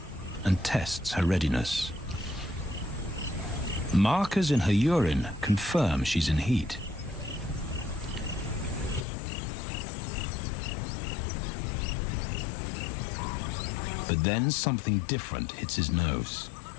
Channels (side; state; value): right; drops out; at 9.1 s